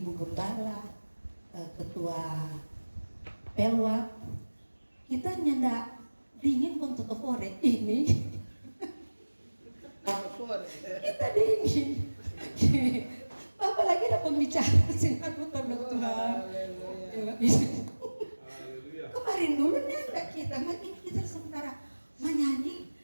gembala, ketua pelwak. Kita nyendak dingin untuk ore ini. Kita dingin. Apalagi ada pembicara sinar Tuhan. Kemarin dulu nyendak kita, makin kita sementara menyanyi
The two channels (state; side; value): inverted; both; correlation -1.00